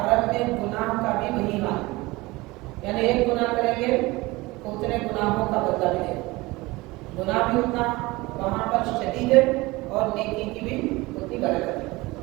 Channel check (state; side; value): quieter; left; 21.6 dB